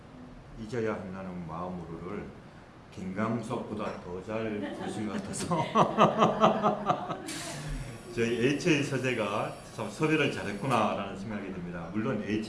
잊어야 한다는 마음으로를 김광석보다 더 잘 부르신 것 같아서 저희 HA 서재가 참 섭외를 잘했구나라는 생각이 듭니다. 물론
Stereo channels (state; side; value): identical; both; correlation 1.00